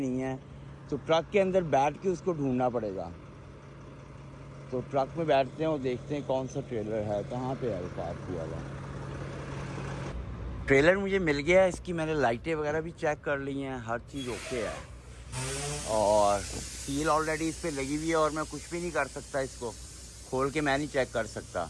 है। तो ट्रक के अंदर बैठ के उसको ढूंढना पड़ेगा। तो ट्रक में बैठते हैं और देखते हैं कौन सा ट्रेलर है, कहाँ पे है वो पार्क हुआ हुआ। ट्रेलर मुझे मिल गया है। इसकी मैंने लाइटें वगैरह भी चेक कर ली हैं, हर चीज़ ओके है। और सील ऑलरेडी इस पर लगी हुई है और मैं कुछ भी नहीं कर सकता, इसको खोल के मैं नहीं चेक कर सकता।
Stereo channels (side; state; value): both; identical; correlation 1.00